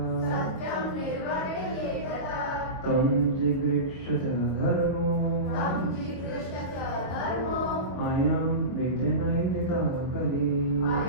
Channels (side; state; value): right; late; 22 ms